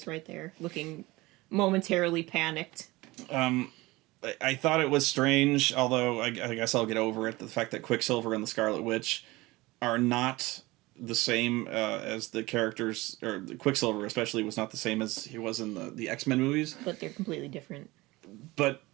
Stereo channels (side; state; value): left; quieter; 20.9 dB